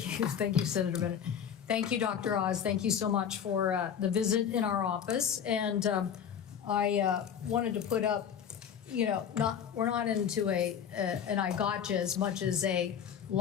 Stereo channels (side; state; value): right; quieter; 8.4 dB